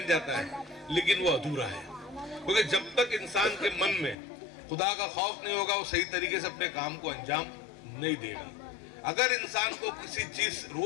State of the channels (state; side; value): drops out; right; at 4.2 s